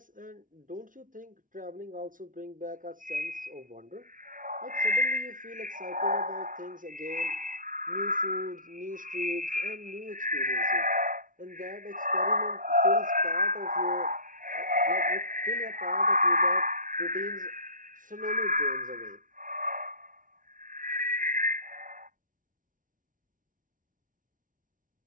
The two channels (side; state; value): left; late; 0.38 ms